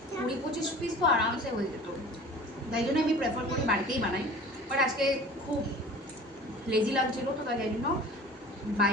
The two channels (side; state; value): both; normal; correlation 0.42